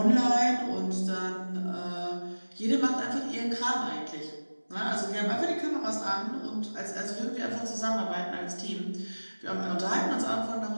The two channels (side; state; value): both; inverted; correlation -1.00